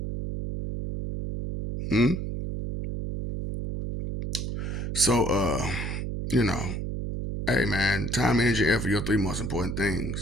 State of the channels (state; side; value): noise; right; hum, 4 dB below the sound